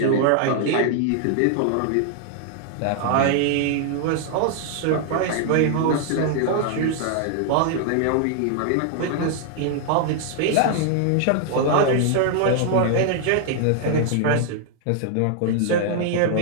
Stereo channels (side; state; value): both; different; correlation 0.00